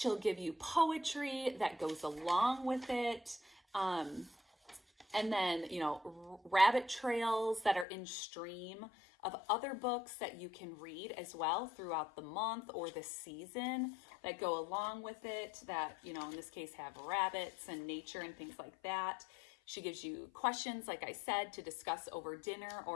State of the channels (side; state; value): right; drops out; at 7.9 s